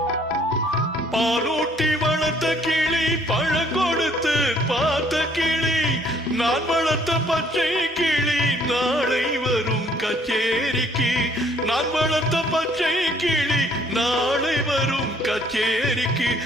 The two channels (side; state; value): both; normal; correlation 0.62